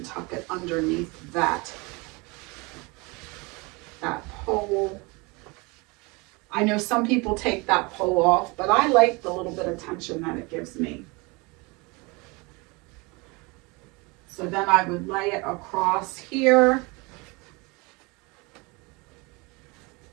tuck it underneath that pole. I know some people take that pole off, but I like the little bit of tension that it gives me. So then I would lay it across here,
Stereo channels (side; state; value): left; quieter; 27.1 dB